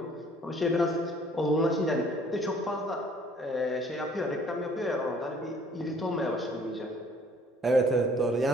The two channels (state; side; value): normal; both; correlation 0.57